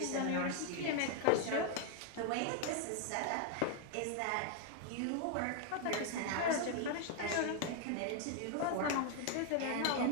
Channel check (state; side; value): different; both; correlation 0.00